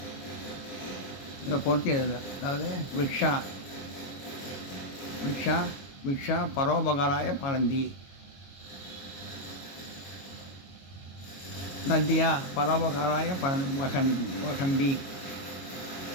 பொருத்தி எழுது. அதாவது விக்ஷா விக்ஷா விக்ஷா பரோபகாராய பலந்தி, நதியா பரோபகாராய வகந்தி,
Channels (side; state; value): right; late; 22 ms